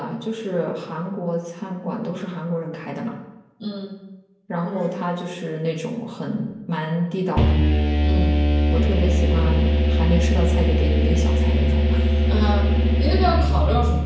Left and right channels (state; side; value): identical; both; correlation 1.00